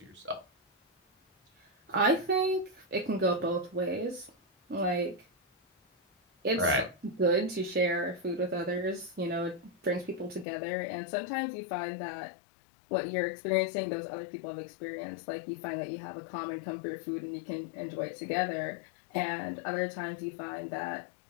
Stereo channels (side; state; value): right; drops out; at 10.5 s